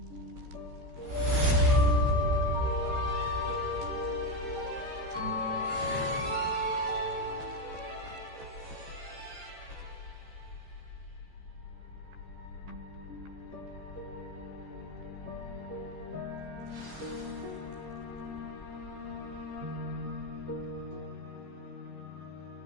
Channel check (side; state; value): left; late; 14 ms